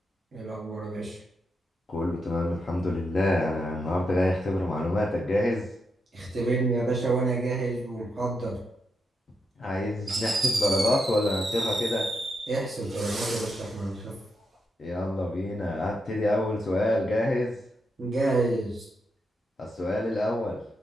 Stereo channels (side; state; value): both; normal; correlation 0.83